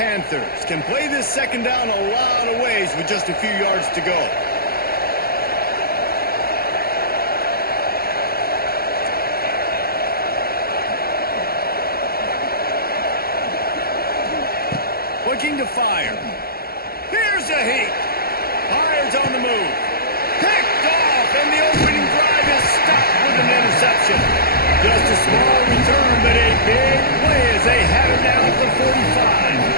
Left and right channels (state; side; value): late; right; 0.44 ms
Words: can play this second down a lot of ways with just a few yards to go. Looking to fire. Here's a heat. Fires on the move. Picked off, and the opening drive is stopped with an interception. Just a small return, but a big play as they have it down at the 45.